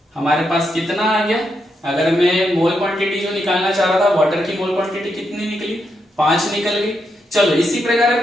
हमारे पास कितना आ गया। अगर मैं मोल क्वांटिटी जो निकालना चाह रहा था, वाटर की मोल क्वांटिटी कितनी निकली, 5 निकल गई। चलो इसी प्रकार अब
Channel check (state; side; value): normal; both; correlation 0.82